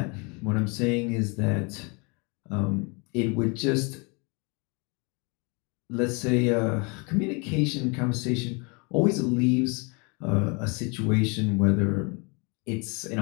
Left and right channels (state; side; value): quieter; right; 31.5 dB